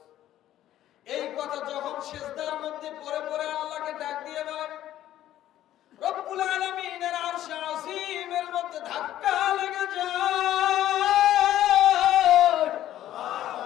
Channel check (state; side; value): quieter; right; 12.8 dB